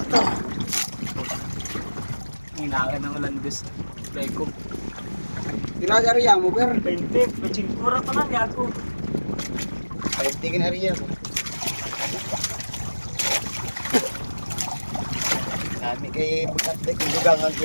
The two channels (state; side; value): inverted; both; correlation -1.00